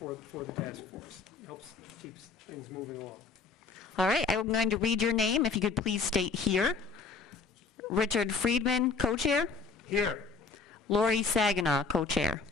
the task force. Helps keeps things moving along. All right, I'm going to read your name. If you could please state here. Richard Friedman, co-chair. Here. Lori Saginaw, co-chair.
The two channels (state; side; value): quieter; right; 4.7 dB